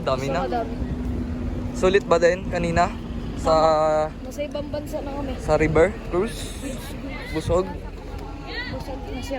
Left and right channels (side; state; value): both; identical; correlation 1.00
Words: Dami na. Madami. Sulit ba din kanina? Sa Nasa ibang bansa na kami. sa river cruise? Busog? Busog,